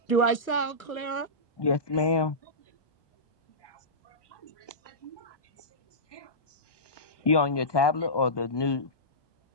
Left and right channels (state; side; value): late; right; 1.1 ms